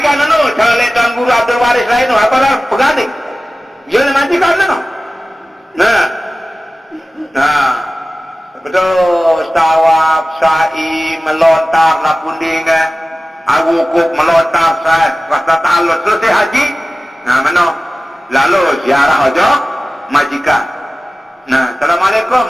anu, calon Tuan Guru Abdul Waris lain tu, apa dah pegading. Dia majikan anu. Nah, betul. Tawaf, sa'i, melontar, lapunding, awukuk, melontar, rasa ta'alud, selesai haji. Nah, mana? Lalu ziarah aja. Majikan. Nah,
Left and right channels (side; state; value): both; normal; correlation 0.96